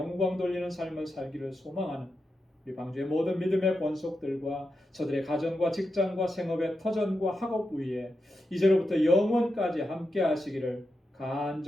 돌리는 삶을 살기를 소망하는 우리 방주의 모든 믿음의 권속들과 저들의 가정과 직장과 생업의 터전과 학업 위에 이제로부터 영원까지 함께 하시기를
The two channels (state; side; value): normal; both; correlation 0.88